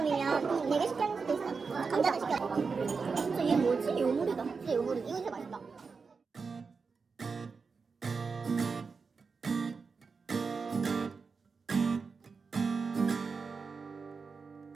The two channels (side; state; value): left; quieter; 4.9 dB